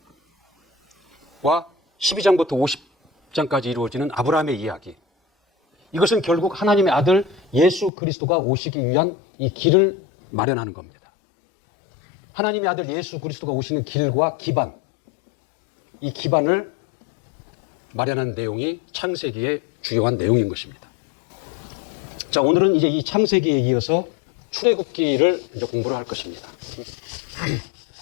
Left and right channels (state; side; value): drops out; right; at 7.9 s